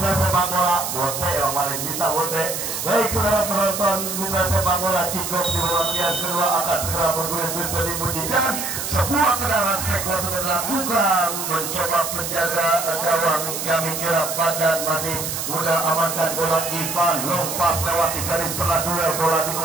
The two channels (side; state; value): right; noise; hiss, 4 dB below the sound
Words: sepak bola, bote yang paling bisa bote. Baik saudara penonton mitra sepak bola, kick-off di babak yang kedua akan segera bergulir bisa dimujikan. Sebuah tendangan spektakuler sudah dilakukan, mencoba penjaga gawang kami kira badan masih muda amankan bola Ivan, lompas lewati garis tengah duel bola di